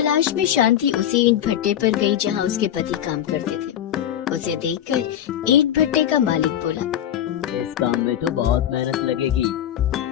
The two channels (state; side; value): quieter; right; 10.7 dB